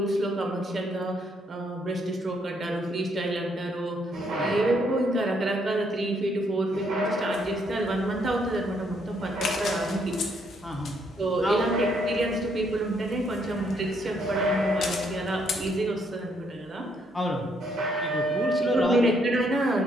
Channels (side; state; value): both; normal; correlation 0.71